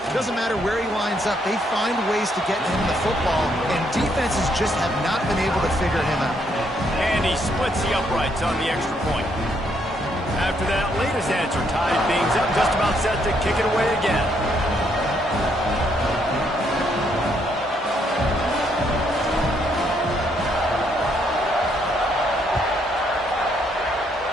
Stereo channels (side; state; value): both; normal; correlation 0.72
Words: Doesn't matter where he lines up, they find ways to get him the football, and defenses just have not been able to figure him out. And he splits the uprights on the extra point. After that latest answer tied things up, just about set to kick it away again.